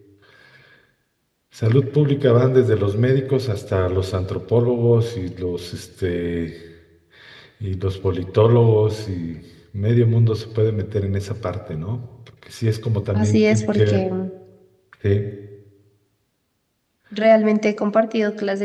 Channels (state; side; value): identical; both; correlation 1.00